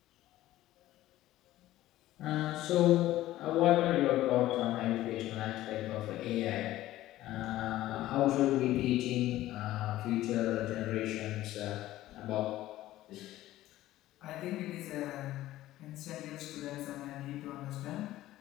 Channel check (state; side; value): quieter; right; 15.2 dB